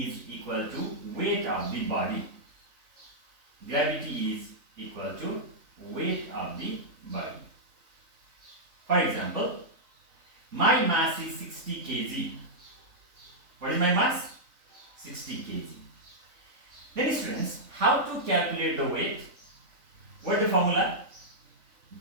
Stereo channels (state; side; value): late; left; 3.5 ms